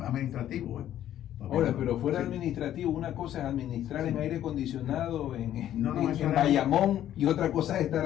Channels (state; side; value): quieter; right; 11.7 dB